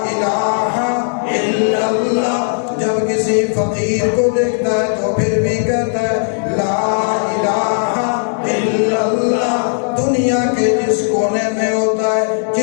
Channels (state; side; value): silent; right; 69 dB below the other